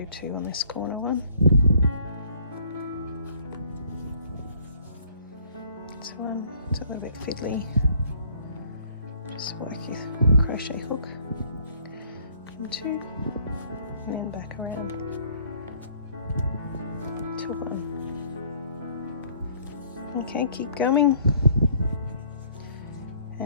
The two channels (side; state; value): both; inverted; correlation -0.60